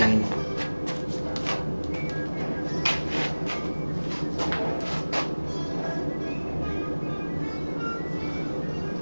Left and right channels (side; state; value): both; inverted; correlation -1.00